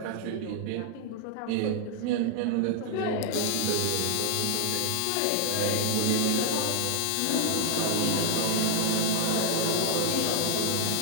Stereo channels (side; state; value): both; different; correlation 0.00